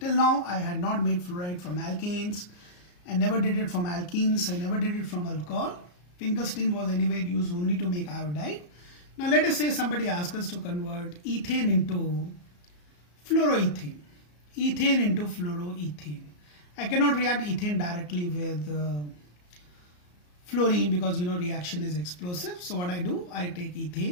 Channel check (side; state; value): right; late; 34 ms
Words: Till now, I had not made fluoride from alkanes. I never did it from alkenes. I never did it from alcohol. Finkelstein was anyway used only to make iodide. Now let us say somebody asks us to convert ethane into fluoroethane. Ethane into fluoroethane. I cannot react ethane directly with fluorine because reaction is explosive. So what I do, I take